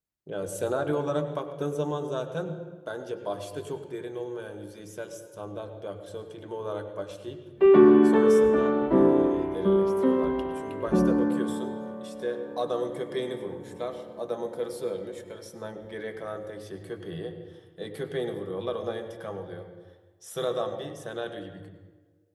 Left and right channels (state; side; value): identical; both; correlation 1.00